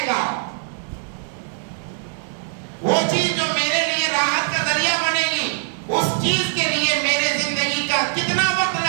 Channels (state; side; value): silent; left; digital silence